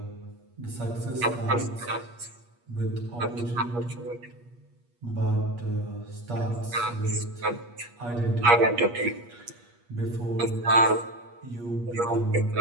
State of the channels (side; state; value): left; late; 8.4 ms